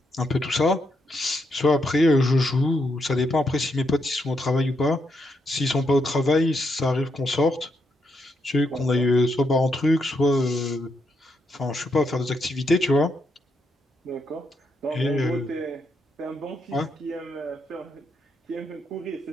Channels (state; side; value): normal; both; correlation 0.79